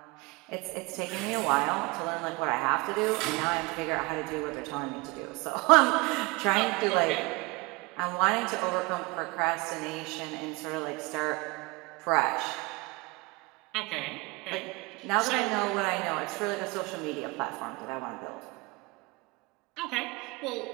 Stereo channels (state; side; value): quieter; left; 25.3 dB